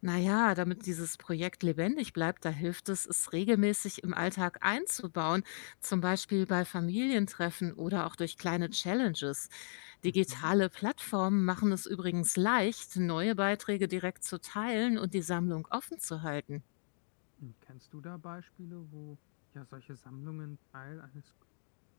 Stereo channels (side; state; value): right; silent; digital silence